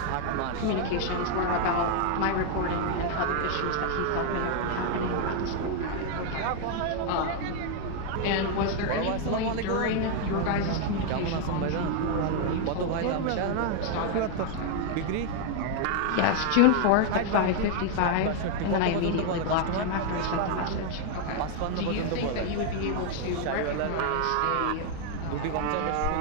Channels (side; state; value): both; different; correlation 0.00